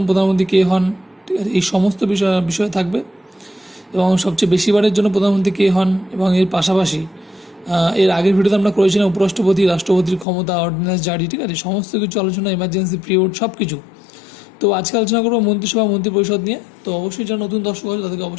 প্রধানমন্ত্রী কে হন, ঠিক আছে, এই সমস্ত বিষয় থাকবে। এবং সবচেয়ে বেশিবারের জন্য প্রধানমন্ত্রী কে হন এবং এর পাশাপাশি এর আগের ভিডিওতে আমরা করেছিলাম উপরাষ্ট্রপতি, রাষ্ট্রপতির ক্ষমতা, অর্ডিন্যান্স জারি, ঠিক আছে, সমস্ত কিছু আলোচনা, এমার্জেন্সি পিরিয়ড, সব কিছু। তো আজকে আলোচনা করবো মন্ত্রিসভা মন্ত্রিপরিষদ নিয়ে। তো অবশ্যই যারা নতুন দর্শক আছে তাদেরকে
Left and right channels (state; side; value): drops out; right; at 10.2 s